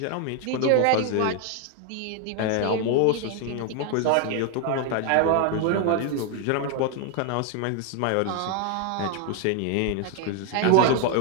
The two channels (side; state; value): both; different; correlation 0.01